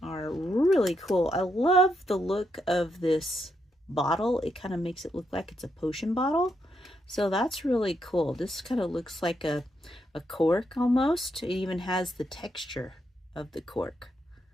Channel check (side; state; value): both; normal; correlation 0.80